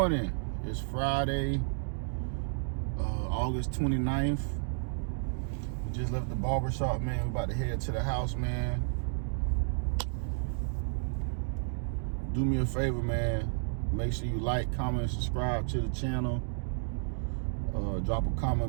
It's Friday, August 29th. We just left the barbershop, man. We're about to head to the house, man. Do me a favor, man. Make sure you like, comment, and subscribe to the channel. Drop a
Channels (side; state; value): left; silent; digital silence